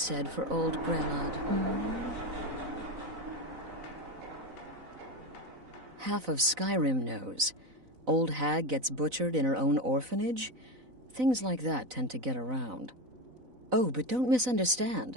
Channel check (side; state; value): left; late; 4.0 ms